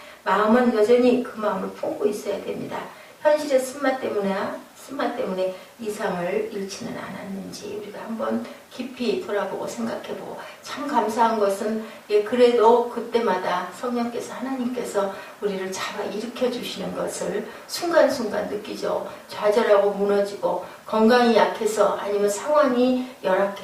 마음은 여전히 그 마음을 품고 있어야 됩니다. 현실의 쓴맛 때문에 이상을 잃지는 않았는지 우리가 한번 깊이 돌아보고 생각해보고, 참 감사한 것은 그래도 그때마다 성령께서, 하나님께서 우리를 잡아 일으켜 주시는 것을 순간순간 느끼죠. 좌절하고 무너지고 건강이 약해서, 아니면 상황이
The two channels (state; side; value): identical; both; correlation 1.00